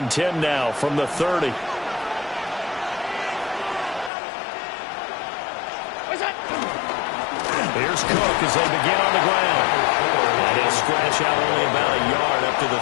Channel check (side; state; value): right; drops out; at 4.1 s